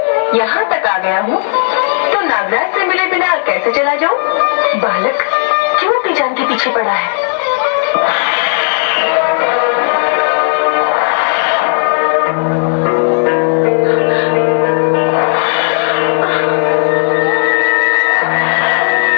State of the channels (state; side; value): silent; right; digital silence